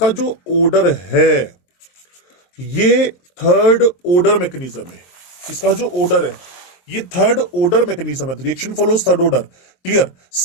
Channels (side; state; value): right; late; 23 ms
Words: जो ऑर्डर है ये थर्ड ऑर्डर मैकेनिज्म है। इसका जो ऑर्डर है ये थर्ड ऑर्डर मैकेनिज्म है, reaction follows third order, clear.